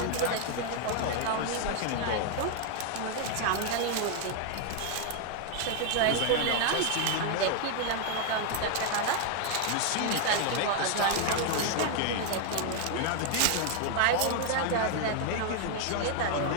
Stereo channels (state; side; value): different; both; correlation 0.00